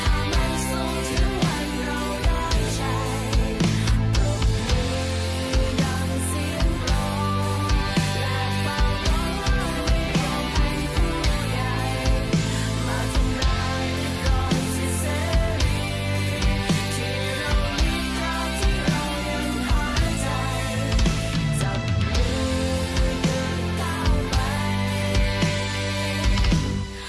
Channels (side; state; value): both; identical; correlation 1.00